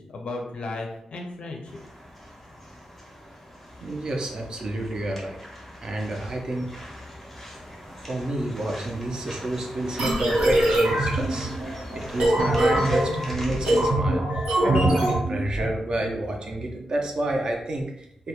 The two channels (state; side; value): normal; both; correlation 0.86